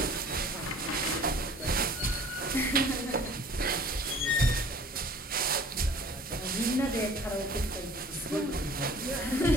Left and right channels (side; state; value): both; normal; correlation 0.49